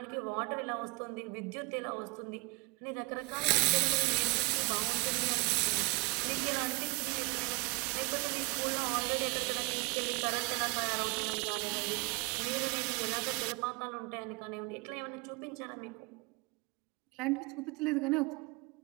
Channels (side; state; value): left; quieter; 27.0 dB